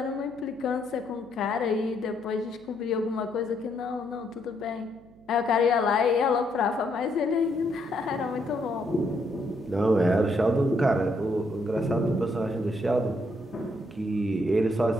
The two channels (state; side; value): noise; right; hum, 26 dB below the sound